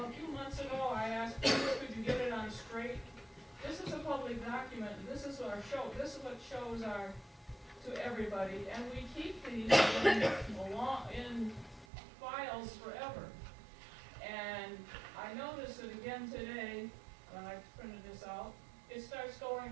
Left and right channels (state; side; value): drops out; left; at 11.9 s